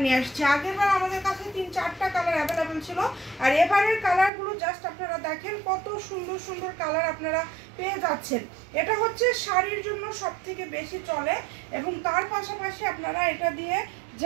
নিয়ে আসছি। আগের বার আমাদের কাছে 3-4টা কালার অ্যাভেলেবেল ছিল, আর এবারের কালারগুলো জাস্ট আপনারা দেখেন কত সুন্দর সুন্দর কালার আপনারা পেয়ে যাচ্ছেন। এটা হচ্ছে শাড়ির জন্য সব থেকে বেশি চলে এবং তার পাশাপাশি আপনারা এটা দিয়ে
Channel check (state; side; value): drops out; left; at 4.3 s